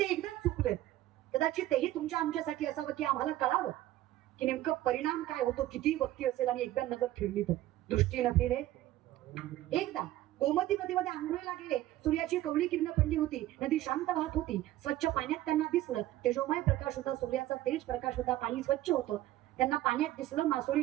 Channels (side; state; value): left; quieter; 14.9 dB